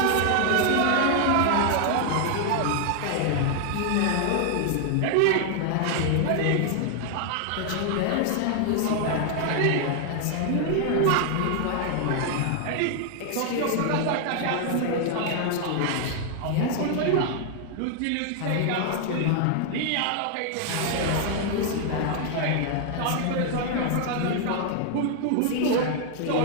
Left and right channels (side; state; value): both; different; correlation 0.00